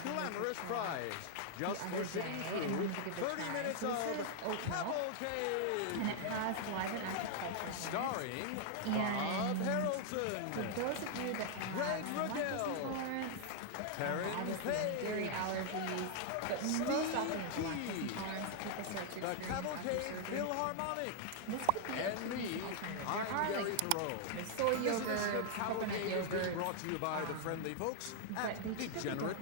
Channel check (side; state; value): both; different; correlation 0.00